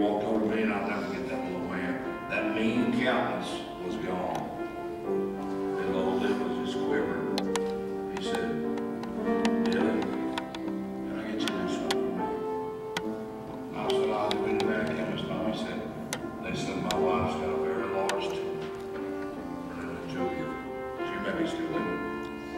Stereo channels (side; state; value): both; identical; correlation 1.00